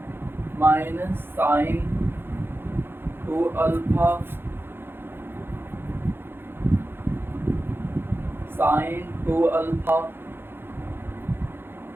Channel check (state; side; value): late; left; 0.10 ms